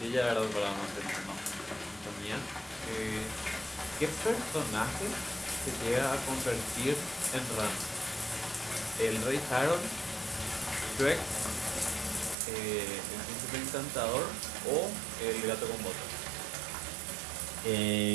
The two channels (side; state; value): left; drops out; at 12.4 s